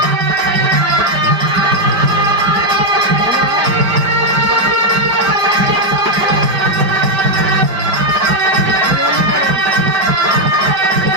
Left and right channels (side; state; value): left; late; 5.1 ms